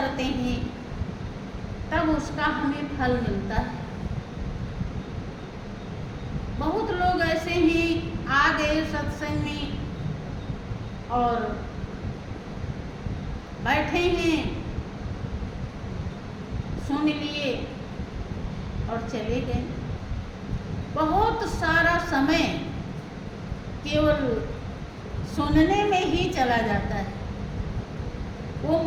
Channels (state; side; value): identical; both; correlation 1.00